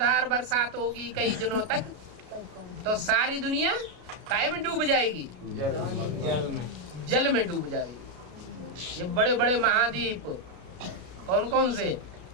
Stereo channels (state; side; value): late; left; 33 ms